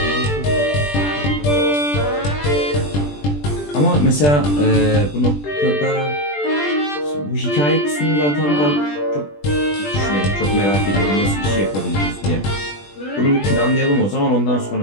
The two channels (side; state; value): right; late; 20 ms